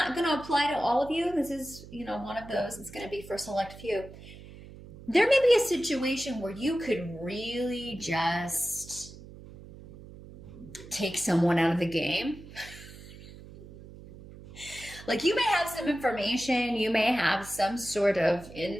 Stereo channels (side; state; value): right; noise; hum, 17 dB below the sound